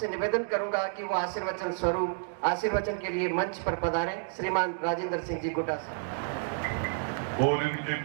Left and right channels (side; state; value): left; silent; digital silence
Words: निवेदन करूंगा कि वो आशीर्वचन स्वरूप आशीर्वचन के लिए मंच पर पधारें। श्रीमान राजेंद्र सिंह जी गुड्डा साहब। और इनके